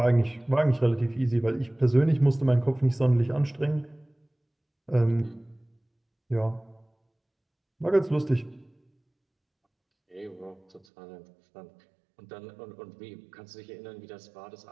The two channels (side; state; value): left; drops out; at 10.8 s